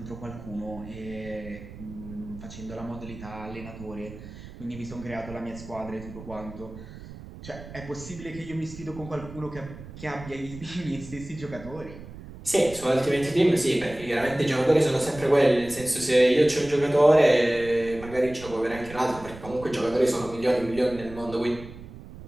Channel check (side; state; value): right; noise; rumble, 15 dB below the sound